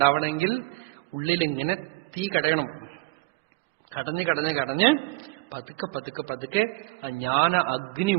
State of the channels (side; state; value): left; quieter; 22.1 dB